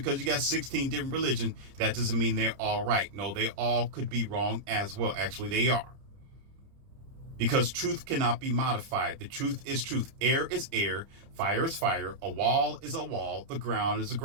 you got 16 different religions, that doesn't mean they're all right. No, they all could be wrong as well. Actually, they are. Because truth cannot be modified. The truth is truth. Air is air. Fire is fire. A wall is a wall. The ground is a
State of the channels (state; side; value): late; left; 30 ms